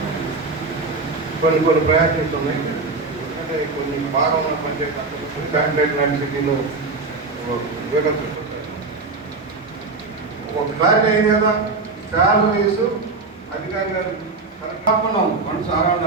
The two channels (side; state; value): left; quieter; 3.8 dB